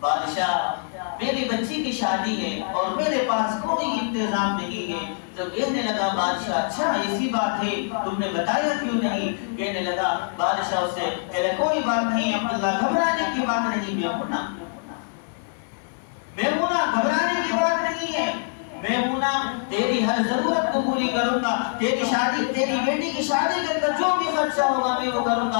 بادشاہ میری بچی کی شادی ہے اور میرے پاس کوئی انتظام نہیں ہے۔ تو کہنے لگا بادشاہ اچھا ایسی بات ہے، تم نے بتایا کیوں نہیں؟ کہنے لگا بادشاہ اس سے کہ کوئی بات نہیں عبداللہ، گھبرانے کی بات نہیں، میمونہ گھبرانے کی بات نہیں ہے، میمونہ تیری ہر ضرورت کو پوری کروں گا، تیری شادی، تیری بیٹی کی شادی کے اندر جو بھی خرچہ ہوگا میں وہ کروں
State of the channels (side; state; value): right; silent; digital silence